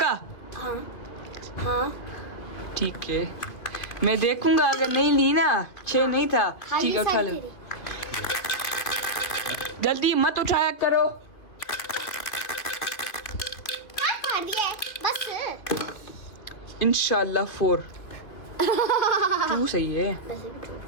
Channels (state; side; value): late; right; 2.6 ms